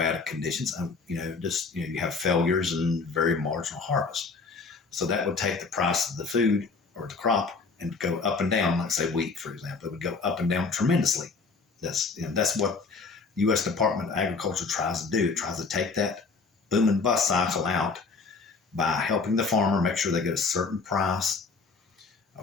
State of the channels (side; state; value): right; quieter; 4.4 dB